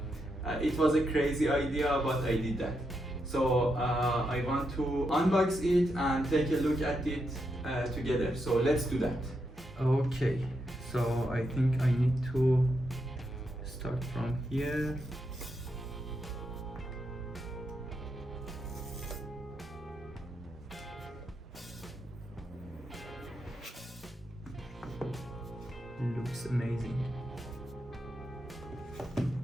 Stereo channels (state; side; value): normal; both; correlation 0.83